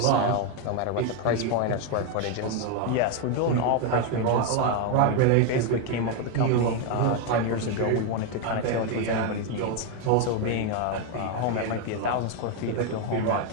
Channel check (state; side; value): different; both; correlation 0.01